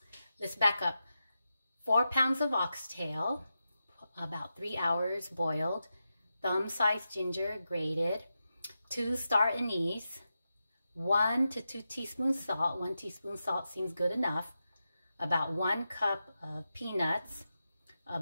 let's back up. 4 pounds of oxtail, about 3 hours boiled. Thumb-sized ginger grated. 2 star anise. 1 to 2 teaspoons salt. 1 teaspoon salt seems good enough. About 1 cup of peanuts. A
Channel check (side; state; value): both; inverted; correlation -0.89